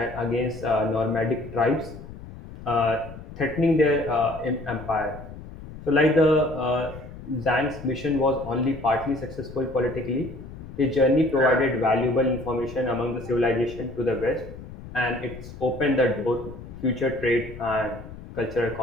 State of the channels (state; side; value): noise; left; rumble, 14 dB below the sound